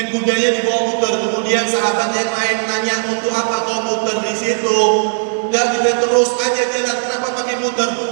kudanya dibawa muter. Kemudian sahabat yang lain nanya, untuk apa kau muter di situ? Dan dia terus aja jalan. Kenapa pakai muter?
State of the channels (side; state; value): left; silent; digital silence